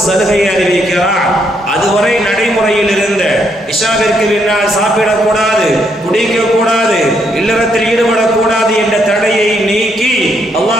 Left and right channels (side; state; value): both; normal; correlation 0.74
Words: சலுகையை அறிவிக்கிறான். அதுவரை நடைமுறையில் இருந்த இஷாவிற்கு பின்னால் சாப்பிடக்கூடாது, குடிக்கக்கூடாது, இல்லறத்தில் ஈடுபடக்கூடாது என்ற தடையை நீக்கி